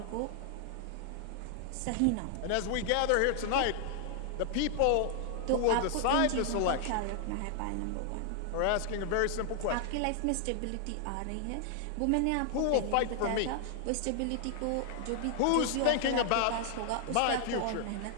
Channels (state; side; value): different; both; correlation 0.00